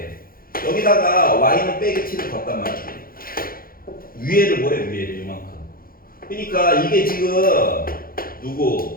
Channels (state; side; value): late; right; 0.42 ms